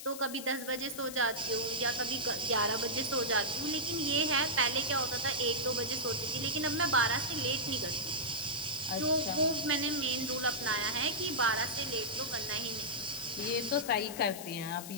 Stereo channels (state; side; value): noise; left; hiss, 11 dB below the sound